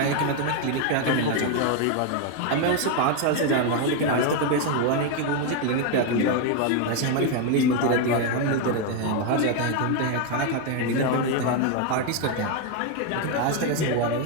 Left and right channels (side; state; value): both; different; correlation 0.01